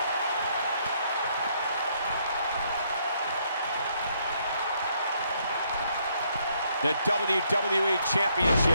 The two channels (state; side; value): inverted; both; correlation -0.71